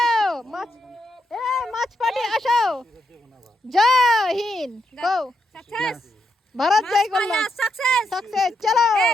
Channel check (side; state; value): both; normal; correlation 0.81